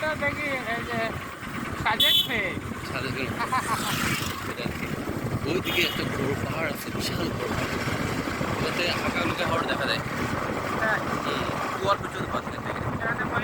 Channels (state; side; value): identical; both; correlation 1.00